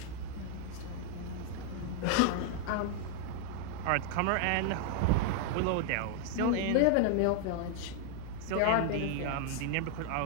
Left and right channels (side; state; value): both; different; correlation 0.00